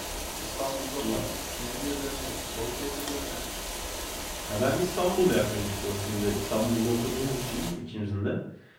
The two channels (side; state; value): both; identical; correlation 1.00